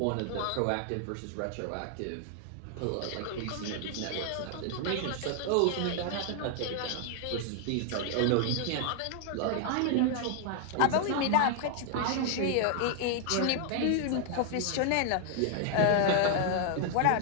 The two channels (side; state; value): both; different; correlation 0.00